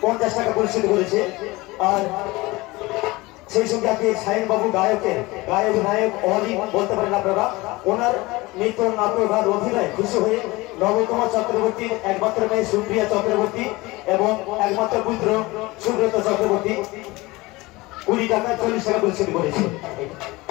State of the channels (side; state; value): right; quieter; 21.7 dB